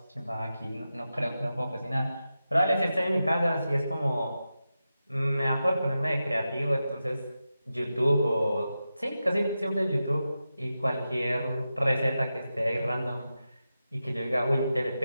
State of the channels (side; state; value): both; inverted; correlation -0.91